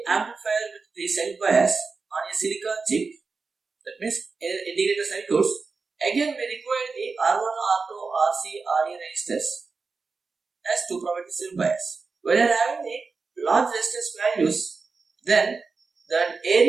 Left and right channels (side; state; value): left; quieter; 4.4 dB